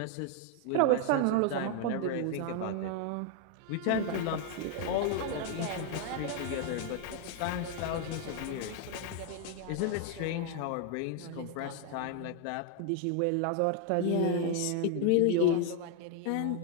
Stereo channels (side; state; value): both; different; correlation 0.00